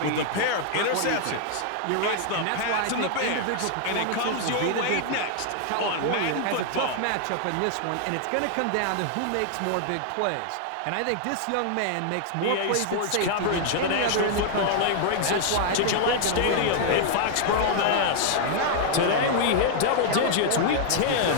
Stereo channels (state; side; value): different; both; correlation 0.00